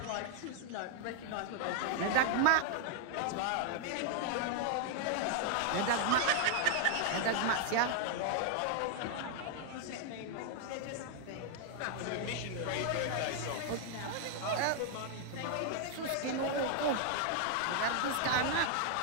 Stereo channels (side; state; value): both; different; correlation 0.00